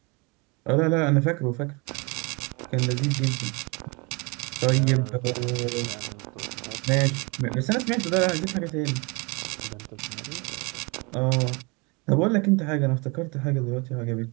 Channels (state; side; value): quieter; left; 29.1 dB